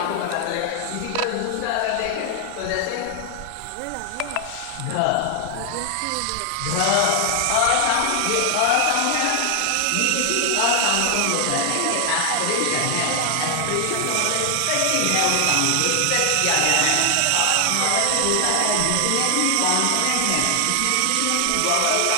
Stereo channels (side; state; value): both; different; correlation 0.00